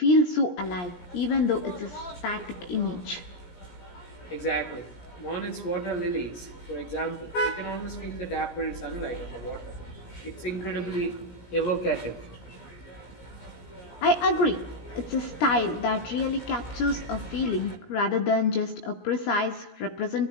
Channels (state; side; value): late; right; 17 ms